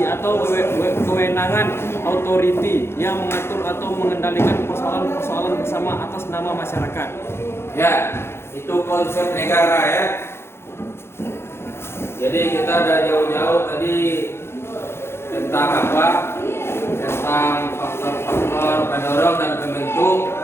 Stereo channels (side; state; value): right; late; 0.12 ms